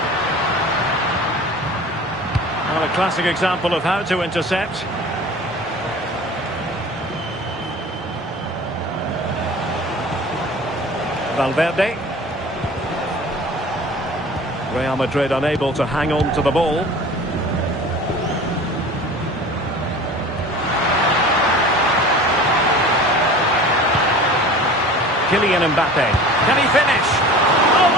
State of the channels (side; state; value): both; normal; correlation 0.41